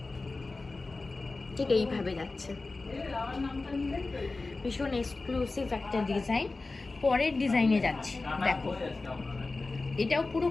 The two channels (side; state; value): right; quieter; 3.5 dB